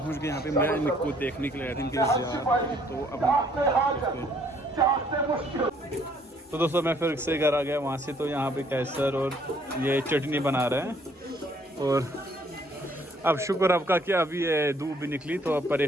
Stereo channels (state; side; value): normal; both; correlation 0.63